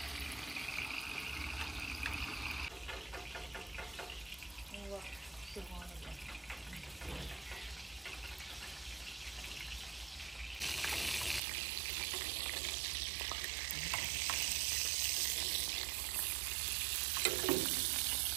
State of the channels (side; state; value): left; drops out; at 11.4 s